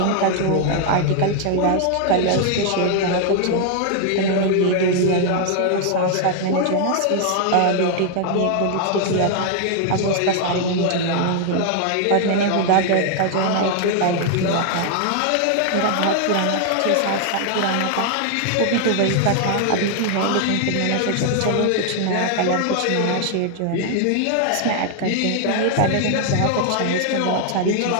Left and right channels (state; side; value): different; both; correlation 0.00